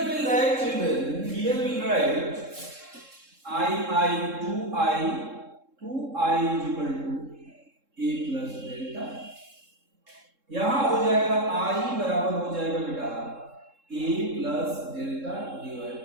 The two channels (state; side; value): late; left; 3.7 ms